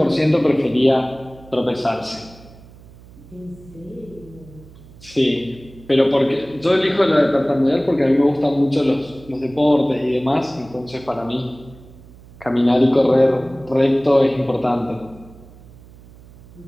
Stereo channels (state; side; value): noise; right; hum, 22 dB below the sound